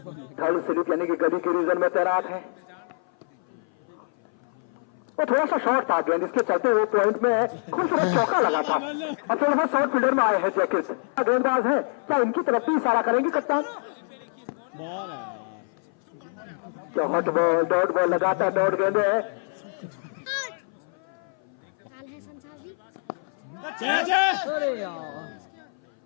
थर्ड स्लिप यानी कि गली के रीजन में तैनात है। वो थोड़ा सा शॉर्ट था गेंद, इसके चलते हुए पॉइंट में खूबसूरत चौका लगा था। अब थोड़ा सा शॉर्ट फील्डर में आए हैं जैकेट गेंदबाज है। क्या इनकी तरफ भी इशारा करेंगे कप्तान? बॉल है हॉट बॉल डॉट बॉल लगाता डॉट गेंदे है। कैच है।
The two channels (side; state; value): right; silent; 58 dB below the other